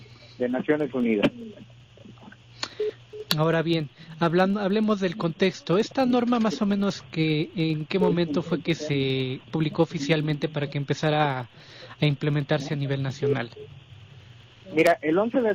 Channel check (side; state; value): both; identical; correlation 1.00